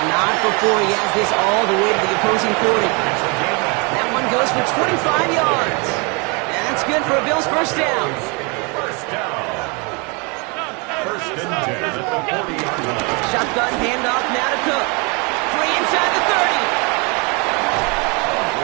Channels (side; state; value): left; quieter; 31.1 dB